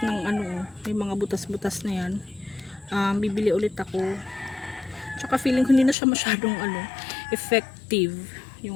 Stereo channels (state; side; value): drops out; right; at 6.0 s